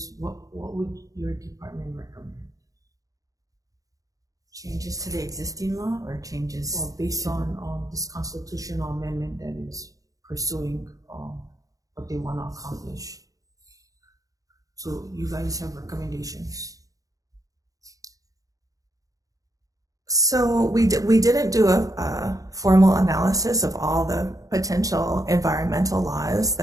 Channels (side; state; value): left; late; 0.17 ms